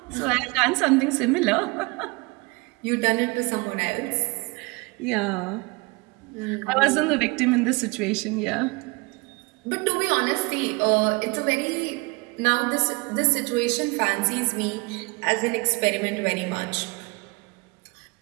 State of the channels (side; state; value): left; quieter; 27.1 dB